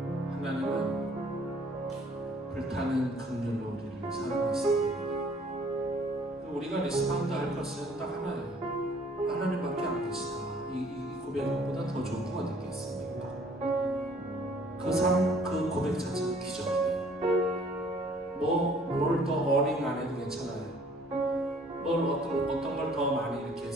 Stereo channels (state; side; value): normal; both; correlation 0.57